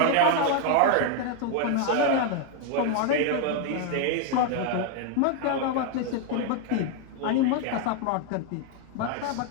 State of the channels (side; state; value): both; different; correlation 0.01